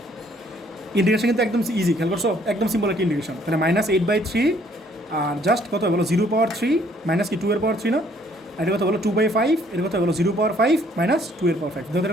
ইন্টিগ্রেশন কিন্তু একদম ইজি, খেয়াল করছো, একদম সিম্পল একটা ইন্টিগ্রেশন। তাহলে -8/3, আর জাস্ট কত বলো 0 পাওয়ার 3 মাইনাস কি 2 এর পাওয়ার 3 না, আর এটা কত বলো 2/5, এটা কত বলো 0 পাওয়ার 5 মাইনাস 2 এর পাওয়ার 5, দেখো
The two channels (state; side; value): normal; both; correlation 0.63